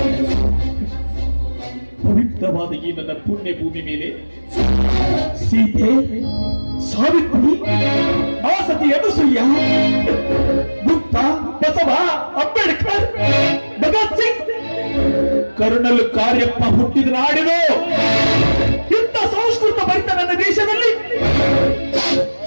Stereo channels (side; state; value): both; inverted; correlation -1.00